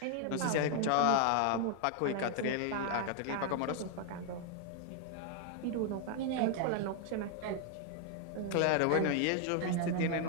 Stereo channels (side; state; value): both; different; correlation 0.00